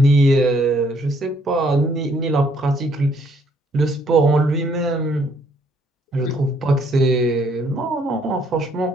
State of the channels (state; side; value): normal; both; correlation 0.67